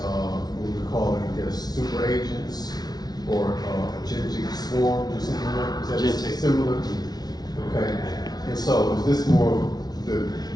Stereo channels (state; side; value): late; right; 0.19 ms